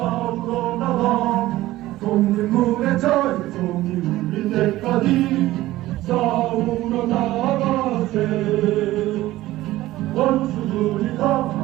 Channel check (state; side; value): quieter; left; 16.3 dB